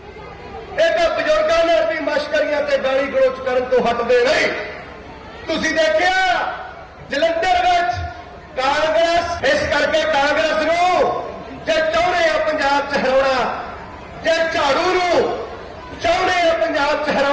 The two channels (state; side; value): identical; both; correlation 1.00